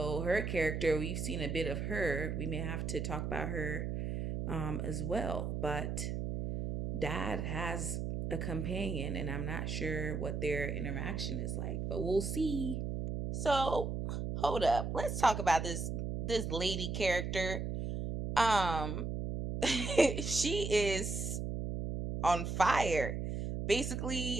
her character, we've seen a bit of her. We may have to talk about her as well. But dad has a companion, and I'm not sure what their interaction is like, but we'll see. So hold up, let's talk about this lady character. Um, she is on fire.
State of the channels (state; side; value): noise; right; hum, 3 dB below the sound